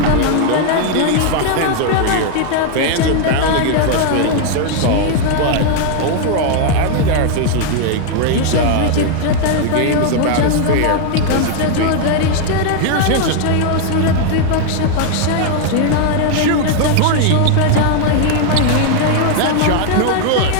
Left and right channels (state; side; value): different; both; correlation 0.00